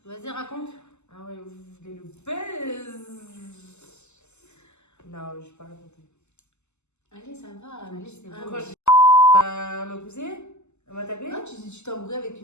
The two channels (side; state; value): right; late; 0.83 ms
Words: Vas-y, raconte. Ah ouais, vous voulez le buzz? Non, je vais pas raconter. Allez, ça va. Allez, c'est bon. Pourquoi elle m'a poussé? Elle m'a tapé? Non, tu t'es embrouillé avec